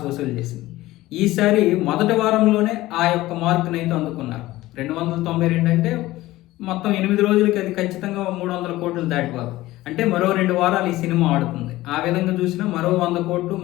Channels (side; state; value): right; quieter; 17.2 dB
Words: వసూలు చేసింది. ఈసారి మొదటి వారంలోనే ఆ యొక్క మార్కునైతే అందుకున్నారు. 292 అంటే మొత్తం 8 రోజులకి అది ఖచ్చితంగా 300 కోట్లు దాటిపోదు. అంటే మరో 2 వారాలు ఈ సినిమా ఆడుతుంది. ఆ విధంగా చూసినా మరో 100 కోట్లు,